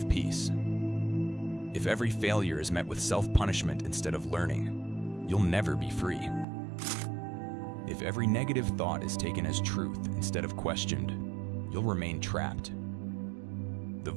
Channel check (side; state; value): left; drops out; at 6.5 s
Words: peace. If every failure is met with self-punishment instead of learning, you'll never be free. If every negative thought is taken as truth instead of questioned, you'll remain trapped. The